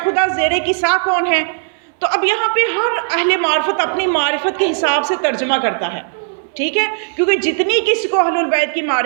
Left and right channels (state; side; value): silent; left; digital silence